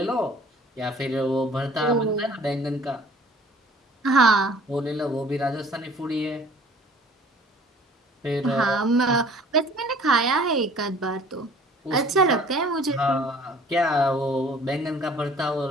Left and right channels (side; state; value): both; normal; correlation 0.51